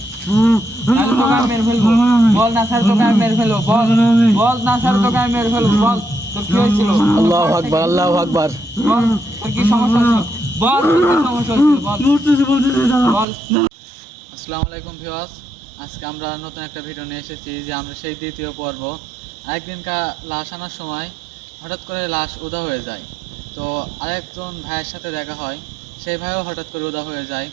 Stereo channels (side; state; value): left; drops out; at 13.2 s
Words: নাহলে তোকে আমি মেরে ফেলবো। বল না স্যার তোকে আমি মেরে ফেলবো। বল বল না স্যার তোকে আমি মেরে ফেলবো। বল তোর কি হয়েছিল? আল্লাহু আকবার, আল্লাহু আকবার। বল তোর কি সমস্যা ছিল? বল তোর কি সমস্যা ছিল? বল বলতেছে দাদা। বল। আসসালামু আলাইকুম ভিউয়ার্স, আজকে আমরা নতুন একটা ভিডিও নিয়ে এসেছি যে আমরা সেই দ্বিতীয় পর্ব। একদিনকার লাশ আনার সময় হঠাৎ করে লাশ উদা হয়ে যায়। তো আরেকজন ভাইয়ের সাথে দেখা হয়, সেই ভাইও হঠাৎ করে উদা হয়ে যায়।